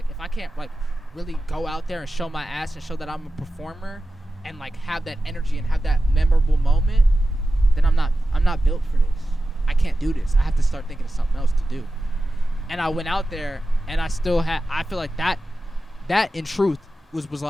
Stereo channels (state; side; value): normal; both; correlation 0.93